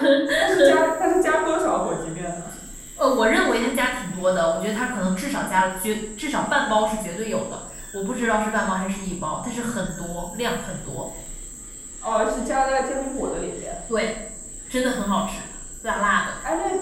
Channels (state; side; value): identical; both; correlation 1.00